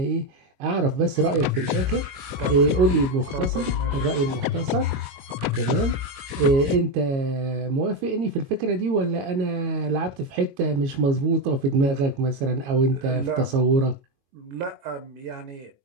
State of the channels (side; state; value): left; late; 22 ms